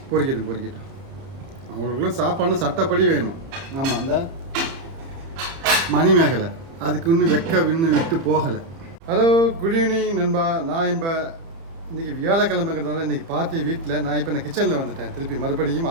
பொறிக்கட்டும். அவங்களுக்குலாம் சாப்பாடுன்னு சட்டப்படி வேணும். ஆமாம், அந்த மணிமேகலை அதுக்கு இன்னும் விட்டு போகலை. ஹலோ, குட் ஈவினிங் நண்பா. நான் இப்போ இன்றைக்கி வியாழக்கிழமைங்கிறதுனால இன்றைக்கி பார்ட்டி வீட்டில் நான் இப்போ கிச்சனில் வந்துட்டேன். திருப்பி மறுபடியும்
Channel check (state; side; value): late; left; 30 ms